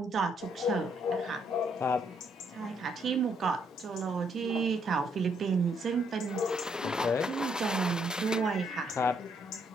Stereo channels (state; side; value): normal; both; correlation 0.72